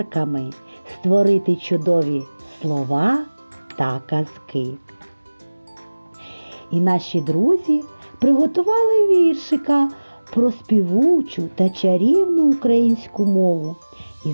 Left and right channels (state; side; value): inverted; both; correlation -1.00